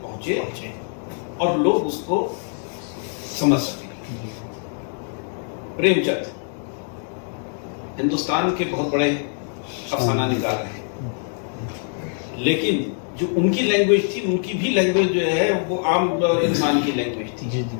پہنچے اور لوگ اس کو سمجھ سکیں. پریم چند ہندوستان کے بہت بڑے افسانہ نگار ہیں، لیکن جو ان کی لینگویج تھی، ان کی بھی لینگویج جو ہے وہ عام انسان کی لینگویج تھی. جی جی.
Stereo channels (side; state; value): right; silent; 56 dB below the other